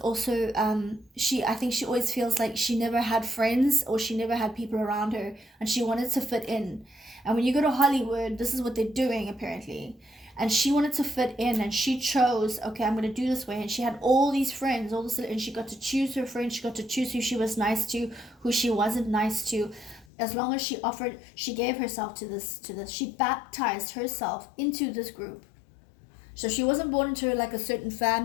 I think she always feels like she never had friends, or she never had people around her, and she wanted to fit in. And when you go to Hollywood, this is what they're doing, apparently. And she wanted to fit in, and she chose, okay, I'm going to do this way. And she had all these friends, and she got to choose her friends. She got to choose who she was nice to, who she wasn't nice to. As long as she gave herself to this. She baptized herself into this group. So she wasn't born into like a certain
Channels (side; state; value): right; drops out; at 20.1 s